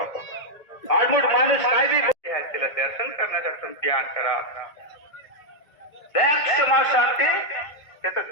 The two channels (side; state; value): right; late; 1.8 ms